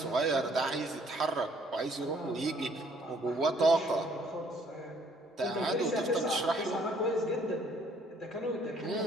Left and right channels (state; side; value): normal; both; correlation 0.62